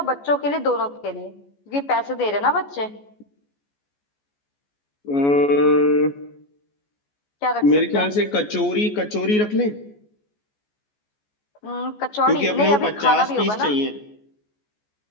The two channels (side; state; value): right; late; 14 ms